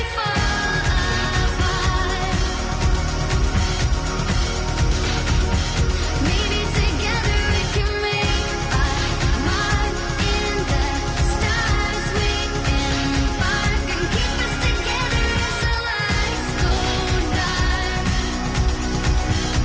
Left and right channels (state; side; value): identical; both; correlation 1.00